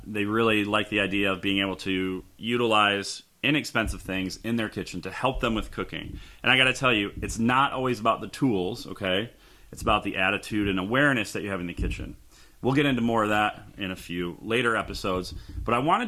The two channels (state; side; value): identical; both; correlation 1.00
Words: They really liked the idea of being able to utilize inexpensive things in their kitchen to help them with cooking. And I gotta tell you, it's not always about the tools, okay? It's about the attitude and awareness that you have in the kitchen. We'll get into more of that in a few later episodes, but I